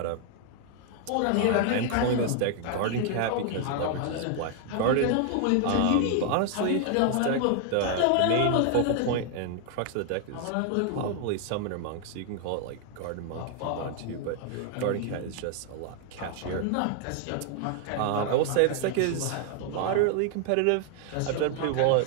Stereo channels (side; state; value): both; different; correlation 0.00